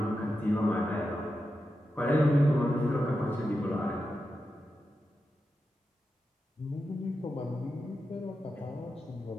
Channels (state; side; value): normal; both; correlation 0.89